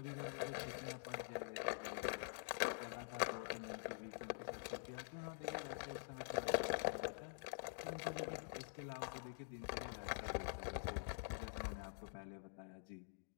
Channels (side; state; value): right; silent; digital silence